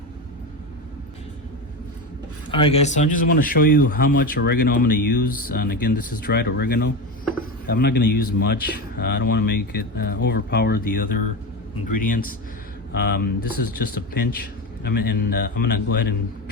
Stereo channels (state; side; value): normal; both; correlation 0.20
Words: Alright guys, so I just want to show you how much oregano I'm going to use. And again, this is dried oregano. I'm not going to use much. I don't want to make it overpower the other ingredients. This is just a pinch. I'm gonna go ahead and